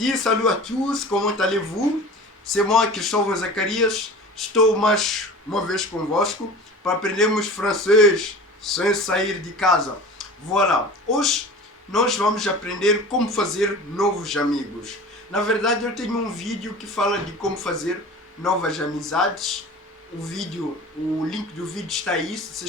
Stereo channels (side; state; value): both; normal; correlation 0.38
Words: salut à tous, comment allez-vous? C'est moi, Cristóvão Zacarias, estou mais uma vez convosco para aprendermos francês sem sair de casa. Voilà, hoje nós vamos aprender como fazer novos amigos. Na verdade, eu tenho um vídeo que fala de como fazer novas amizades. O link do vídeo está aí, se